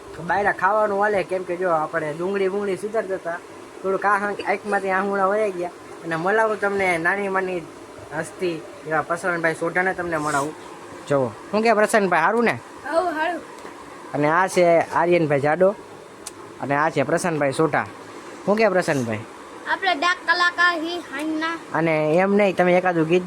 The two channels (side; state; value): both; identical; correlation 1.00